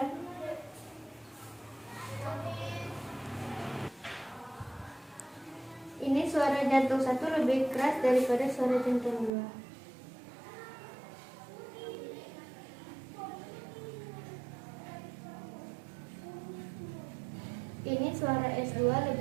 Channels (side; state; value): left; drops out; at 9.3 s